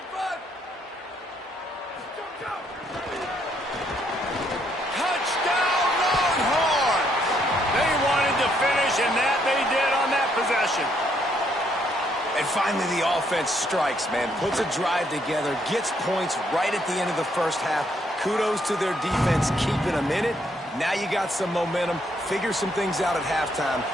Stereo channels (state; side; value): normal; both; correlation 0.72